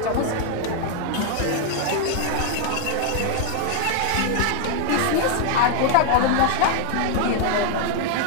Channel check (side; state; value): both; different; correlation 0.00